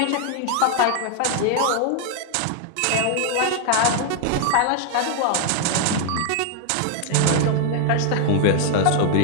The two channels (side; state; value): both; different; correlation 0.00